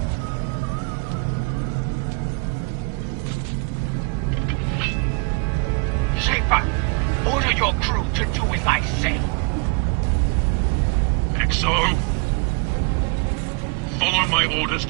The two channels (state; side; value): quieter; left; 34.4 dB